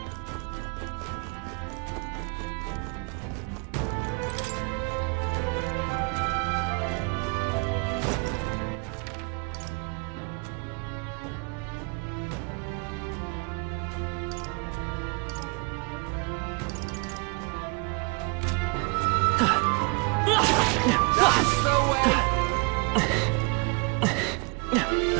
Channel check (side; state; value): left; quieter; 31.7 dB